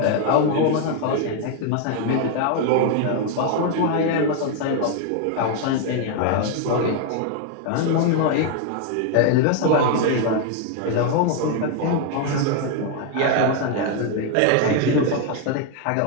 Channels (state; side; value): different; both; correlation 0.01